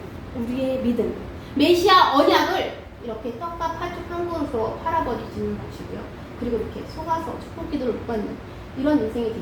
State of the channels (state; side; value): identical; both; correlation 1.00